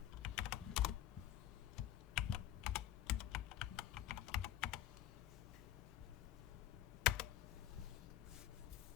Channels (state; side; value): quieter; right; 12.4 dB